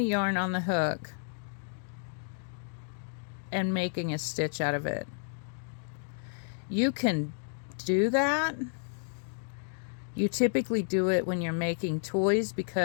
yarn on the hook and making a stitch out of it. You can do that. You typically do it when you're making toys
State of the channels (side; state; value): right; silent; digital silence